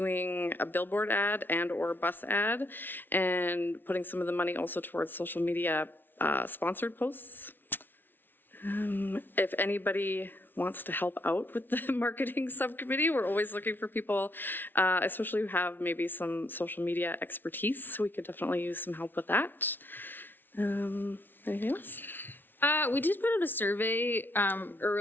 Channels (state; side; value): late; right; 0.096 ms